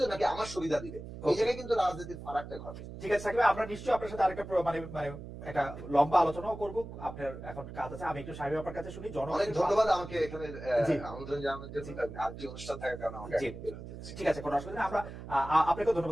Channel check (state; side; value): noise; right; hum, 11 dB below the sound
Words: নাকি আমার সুবিধা দিবে, এই জায়গায় কিন্তু রাজনীতির ফারাকটা ঘটে। ঠিক আছে সাকিব ভাই, আমরা নিশ্চয়ই আপনার সাথে আরেকটা মানে মানে একটা লম্বা আলোচনাও করবো। আপনার এখন কাজ আছে, আমি একটু সাহেব আপনার কাছে শুনি। অনেক ধন্যবাদ আমাকে এখানে আমন্ত্রণ জানানোর জন্য। আরেকটি অনুষ্ঠান থাকার কারণে আমাকে ঠিক আছে, কোনো অসুবিধা নেই। আমরা আপনাকেও